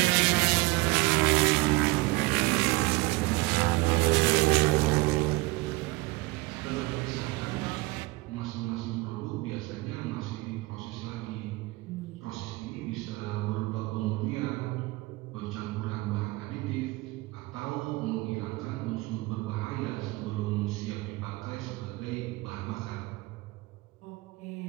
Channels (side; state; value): left; quieter; 22.4 dB